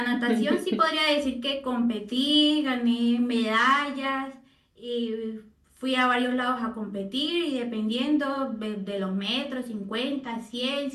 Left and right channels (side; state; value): both; identical; correlation 1.00